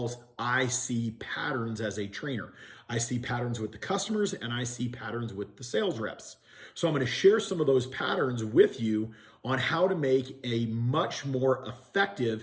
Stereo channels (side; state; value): both; identical; correlation 1.00